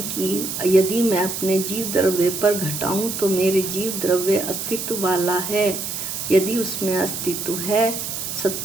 कि यदि मैं अपने जीव द्रव्य पर घटाऊं तो मेरे जीव द्रव्य अस्तित्व वाला है। यदि उसमें अस्तित्व है,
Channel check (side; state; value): right; noise; hiss, 5 dB below the sound